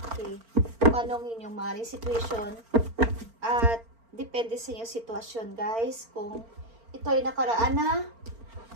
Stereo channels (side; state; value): left; late; 4.4 ms